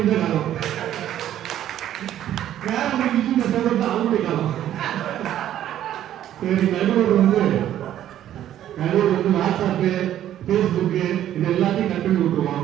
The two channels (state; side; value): quieter; left; 11.7 dB